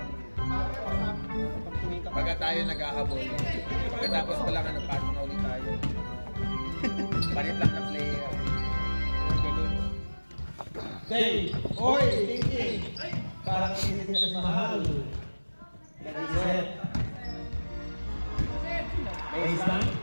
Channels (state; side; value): inverted; both; correlation -1.00